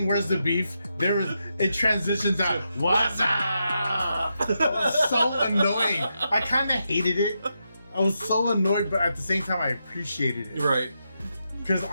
where's the beef, it transitions out what's up. It was so annoying. I kind of hated it. I was so annoyed, but at the same time I appreciated it. Right. Because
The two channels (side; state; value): both; inverted; correlation -0.85